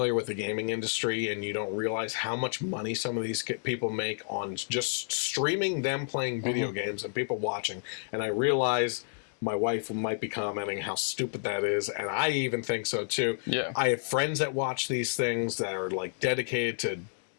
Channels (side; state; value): right; silent; digital silence